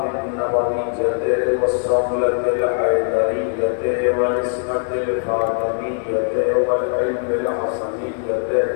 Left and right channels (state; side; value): silent; right; digital silence